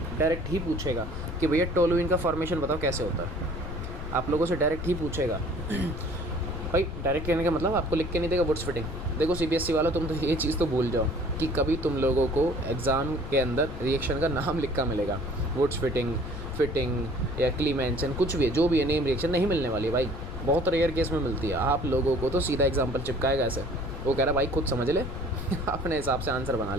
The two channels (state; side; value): noise; left; rumble, 8 dB below the sound